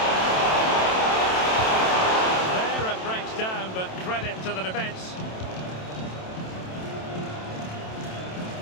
There it breaks down, but credit to the defence.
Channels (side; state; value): right; late; 27 ms